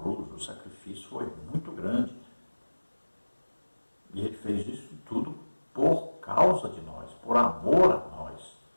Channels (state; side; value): inverted; both; correlation -1.00